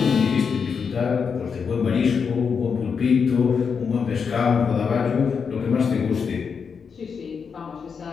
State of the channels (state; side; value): quieter; right; 6.1 dB